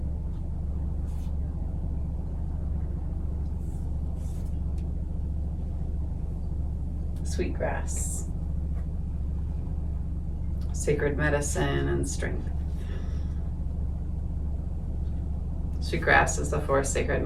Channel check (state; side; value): identical; both; correlation 1.00